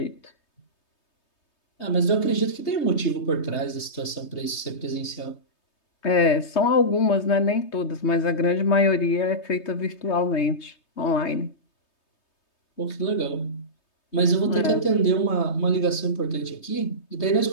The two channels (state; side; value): late; right; 3.2 ms